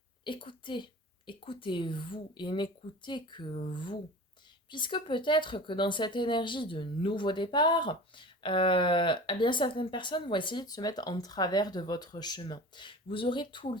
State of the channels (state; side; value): normal; both; correlation 0.36